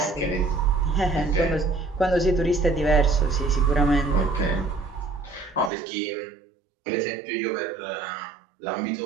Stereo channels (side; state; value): left; drops out; at 5.7 s